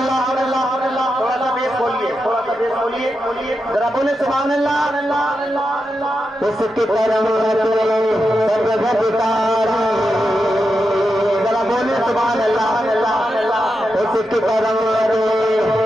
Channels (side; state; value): both; normal; correlation 0.87